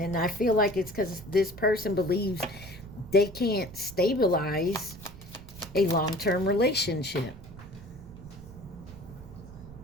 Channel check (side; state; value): right; noise; rumble, 17 dB below the sound